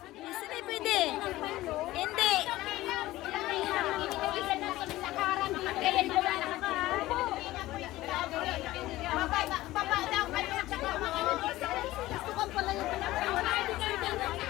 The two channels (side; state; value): right; quieter; 16.9 dB